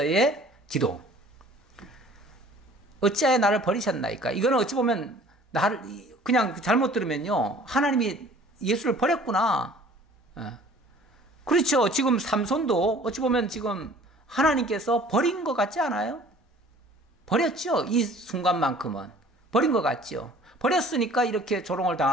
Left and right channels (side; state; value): both; normal; correlation 0.50